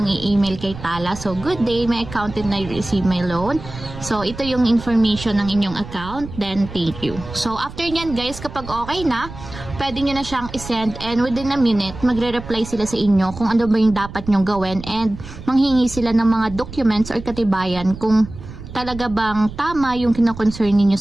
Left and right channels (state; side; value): noise; right; rumble, 13 dB below the sound